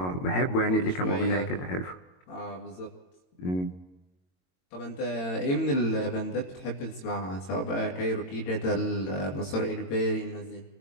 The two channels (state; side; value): late; right; 22 ms